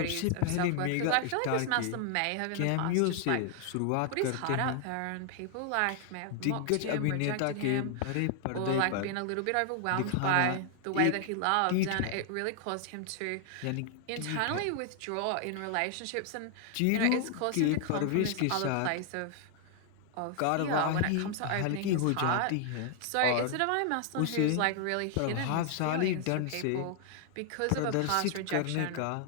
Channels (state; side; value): different; both; correlation 0.00